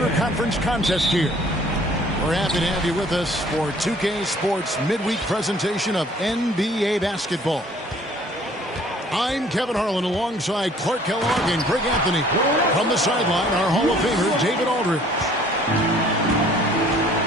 contest here. We're happy to have you with us for 2K Sports midweek presentation of NBA basketball. I'm Kevin Harlan alongside Clark Kellogg and Greg Anthony. From the sideline, our Hall of Famer, David Aldridge.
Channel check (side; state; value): both; normal; correlation 0.56